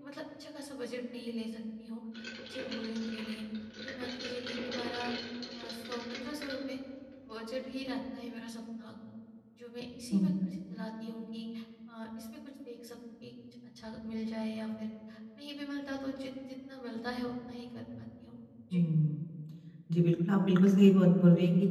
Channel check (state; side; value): identical; both; correlation 1.00